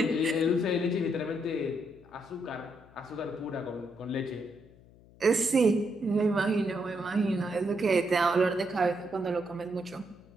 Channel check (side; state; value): left; noise; hum, 25 dB below the sound